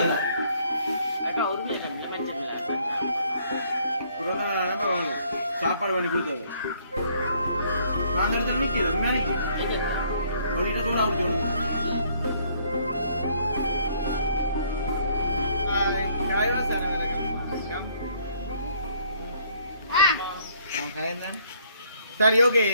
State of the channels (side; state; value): both; inverted; correlation -0.64